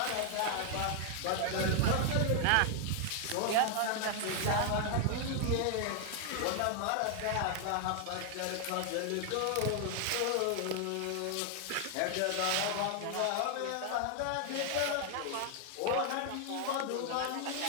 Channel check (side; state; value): both; different; correlation 0.00